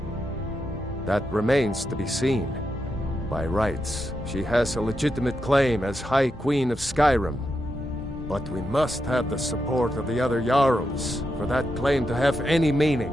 That remains to be seen. By rights, she has a legitimate claim as High Queen of Skyrim. But we must have the support of the other Jarls for that claim to have any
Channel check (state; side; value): normal; both; correlation 0.85